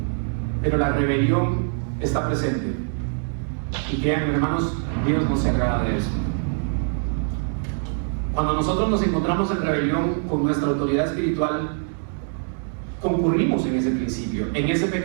pero la rebelión está presente. Y créanme, hermanos, Dios no se agrada de eso. Cuando nosotros nos encontramos en rebelión con nuestra autoridad espiritual, concurrimos en ese principio, en ese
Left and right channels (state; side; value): silent; left; 61 dB below the other